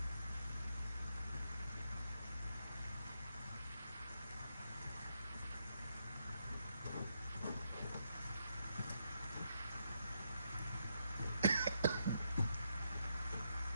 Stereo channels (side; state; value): both; inverted; correlation -0.79